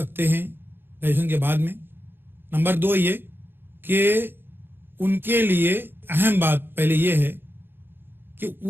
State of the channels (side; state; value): left; late; 0.10 ms